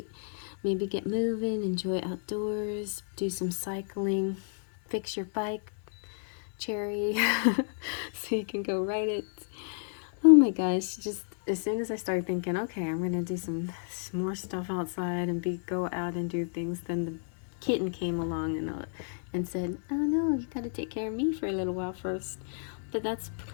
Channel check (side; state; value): right; silent; digital silence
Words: maybe get moving, enjoy outdoors, do some cycling, fix your bike, Cherry, so you can go ride it. Oh my gosh, just as soon as I started thinking, okay, I'm gonna do some more stuff outside and go out and do things, then the kitten came along and said, oh no, you gotta take care of me for a little while first. But that's